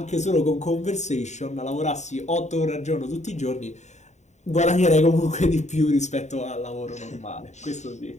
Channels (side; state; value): right; late; 0.34 ms